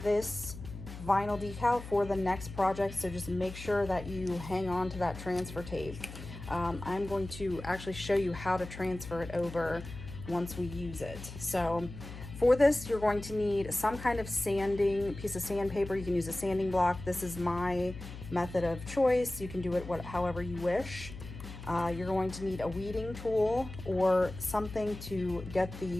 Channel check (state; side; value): noise; left; hum, 12 dB below the sound